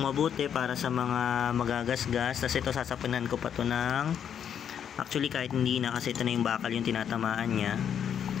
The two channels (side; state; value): right; quieter; 8.6 dB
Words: mabuti para sa mga magagasgas. Tapos ito, sasapunan ko pa to ng, actually, kahit hindi na, kasi ito na yung bakal yung tinatamaan niya.